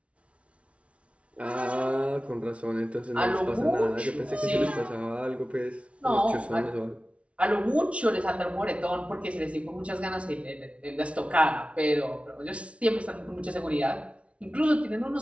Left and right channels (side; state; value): left; late; 0.062 ms